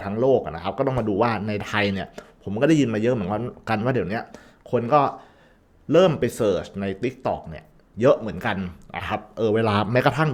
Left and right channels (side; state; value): both; identical; correlation 1.00